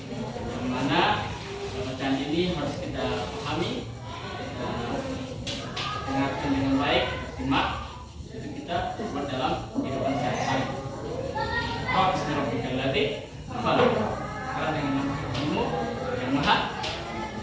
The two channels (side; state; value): both; identical; correlation 1.00